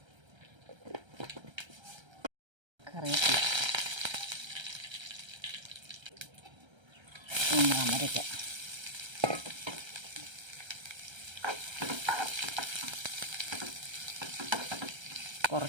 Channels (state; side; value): late; left; 1.3 ms